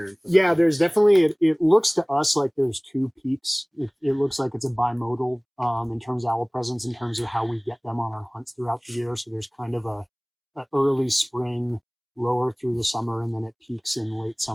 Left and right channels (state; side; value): identical; both; correlation 1.00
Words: And stuff Yeah, like there's definitely, it looks to us like there's two peaks. It looks like it's a bimodal in terms of owl presence, in terms of how we get them on our hunts throughout the year. So there's kind of a early spring, lower through the summer, and then it peaks in late